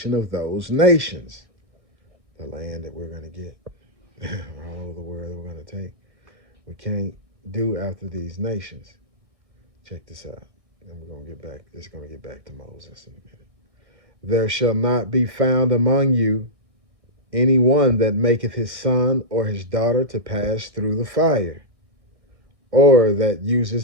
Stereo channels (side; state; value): left; late; 1.6 ms